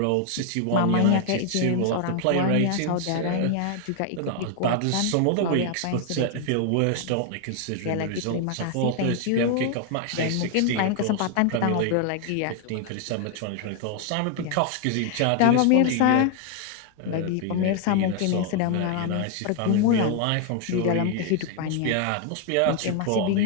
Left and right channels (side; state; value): both; different; correlation 0.00